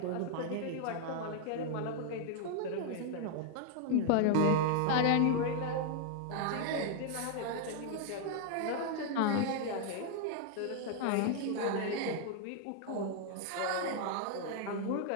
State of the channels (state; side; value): different; both; correlation 0.00